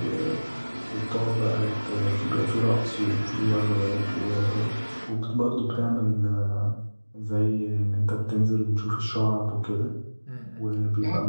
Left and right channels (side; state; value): both; inverted; correlation -1.00